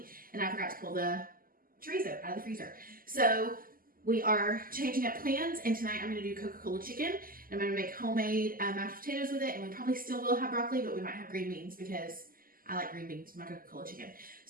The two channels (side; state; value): left; late; 0.42 ms